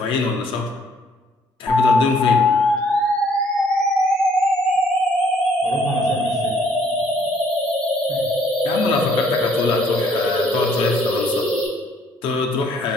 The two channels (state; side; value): normal; both; correlation 0.63